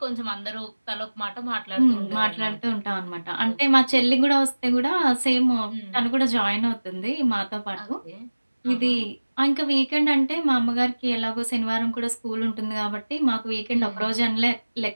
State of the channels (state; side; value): inverted; both; correlation -1.00